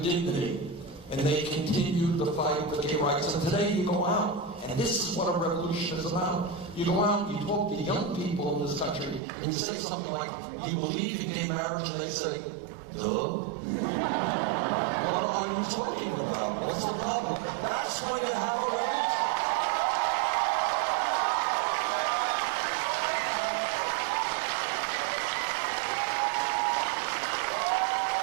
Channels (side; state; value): left; drops out; at 9.2 s